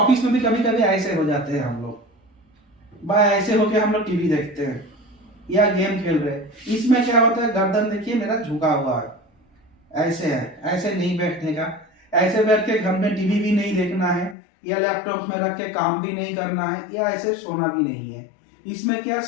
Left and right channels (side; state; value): right; drops out; at 14.4 s